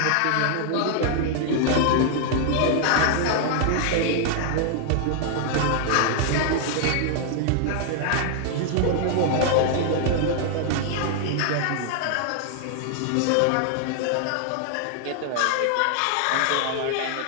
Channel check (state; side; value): different; both; correlation 0.00